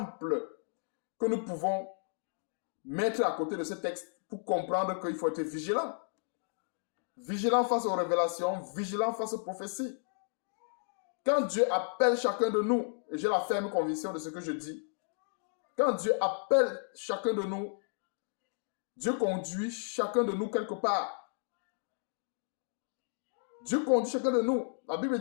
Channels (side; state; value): right; silent; digital silence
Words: que nous pouvons mettre à côté de ce texte pour comprendre qu'il faut être vigilant. Vigilant face aux révélations, vigilant face aux prophéties. Quand Dieu appelle chacun de nous, et j'ai la ferme conviction de ce que je dis, quand Dieu appelle chacun de nous, Dieu conduit chacun de nous quelque part. Dieu conduit chacun de nous. La Bible